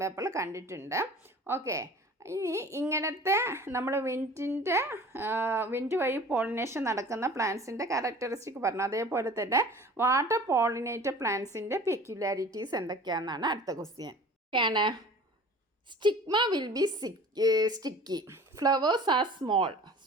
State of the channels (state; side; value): normal; both; correlation 0.44